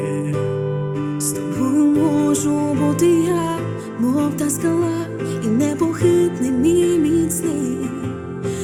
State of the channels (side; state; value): both; identical; correlation 1.00